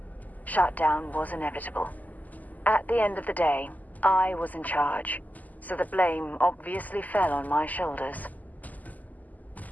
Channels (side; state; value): right; late; 0.080 ms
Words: Shutdown was inevitable. At the end of the day, I was in charge, so the blame obviously fell on my shoulders.